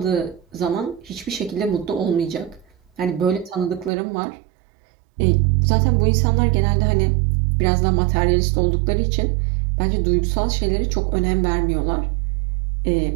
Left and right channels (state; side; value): drops out; left; at 3.9 s